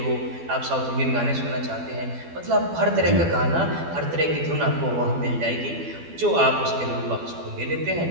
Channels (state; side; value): late; left; 12 ms